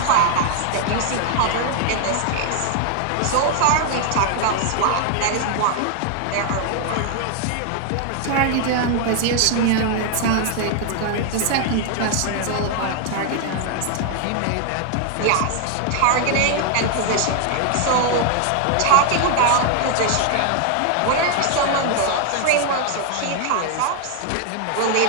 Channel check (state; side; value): different; both; correlation 0.00